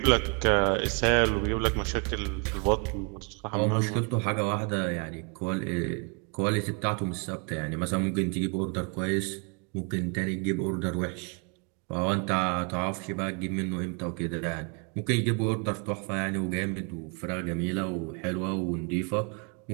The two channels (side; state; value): left; quieter; 36.3 dB